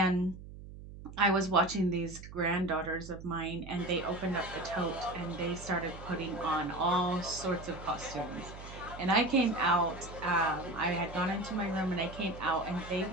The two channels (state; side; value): noise; right; hum, 14 dB below the sound